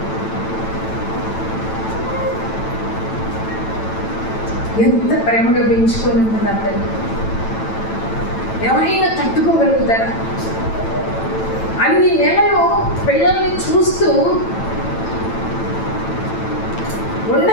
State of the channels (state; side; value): late; right; 9.0 ms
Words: ఎంత ప్రేమగా పెంచుకొని ఉంటుంది ఆ తల్లి. ఎవరైనా తట్టుకోగలుగుతారా? అన్ని నెలలు పిల్లల్ని చూస్తూ